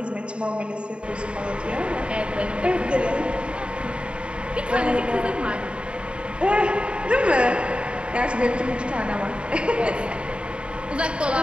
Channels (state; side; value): late; left; 0.056 ms